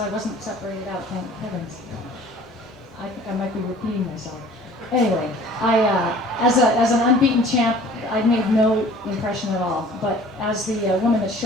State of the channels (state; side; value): normal; both; correlation 0.49